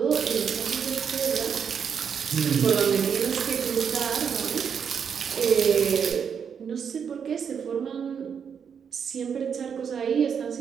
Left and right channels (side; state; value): left; quieter; 7.1 dB